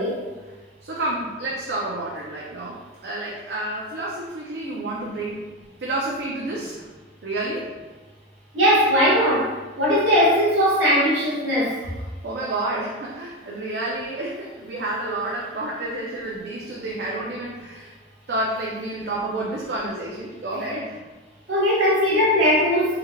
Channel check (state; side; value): normal; both; correlation 0.10